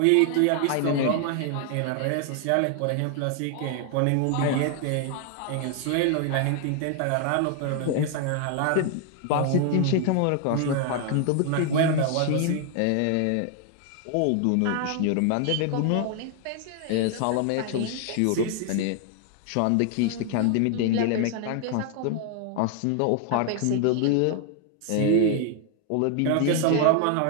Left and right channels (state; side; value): different; both; correlation 0.00